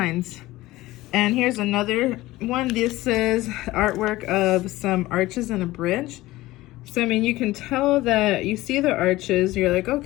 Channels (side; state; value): right; quieter; 17.9 dB